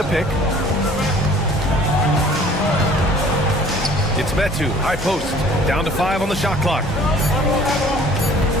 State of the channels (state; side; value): normal; both; correlation 0.52